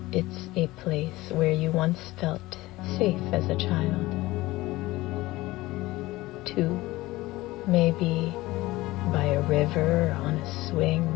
it's a place where you once felt safe as a child. 2. Maybe by a river, on a swing,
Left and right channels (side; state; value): right; quieter; 18.9 dB